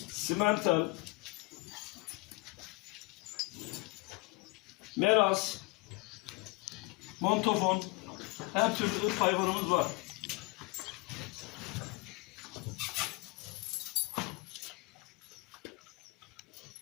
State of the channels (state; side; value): quieter; right; 25.7 dB